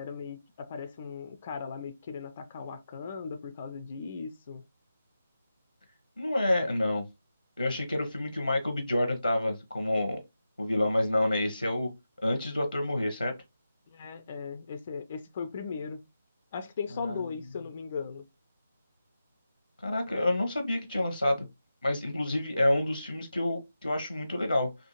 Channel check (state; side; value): inverted; both; correlation -0.91